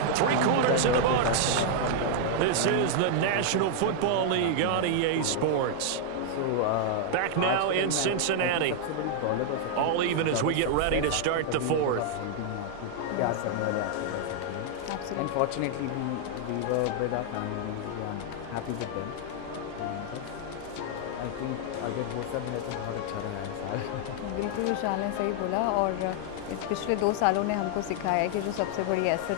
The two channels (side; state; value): both; different; correlation 0.00